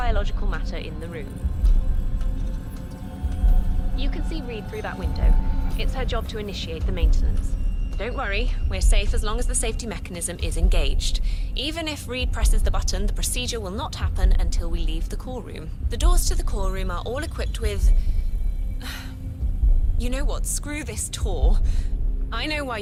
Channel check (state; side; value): identical; both; correlation 1.00